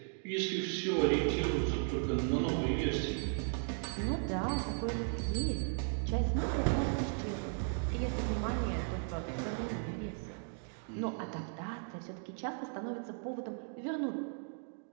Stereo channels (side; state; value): left; silent; 54 dB below the other